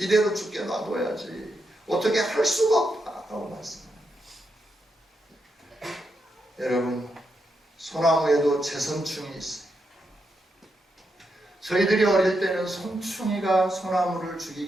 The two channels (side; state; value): both; normal; correlation 0.83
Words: 죽게 놔둬야지 어떻게 할 수가 없다고 말씀합니다. 여러분, 소나무에도 재선충이 있어요. 저희들이 어릴 때는 송충이가 소나무를